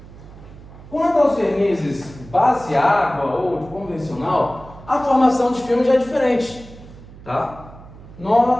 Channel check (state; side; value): noise; right; hum, 19 dB below the sound